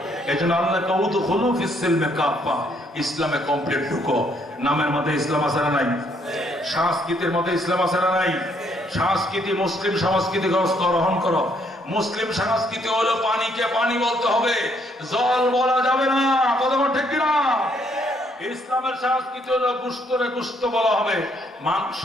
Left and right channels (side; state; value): both; normal; correlation 0.69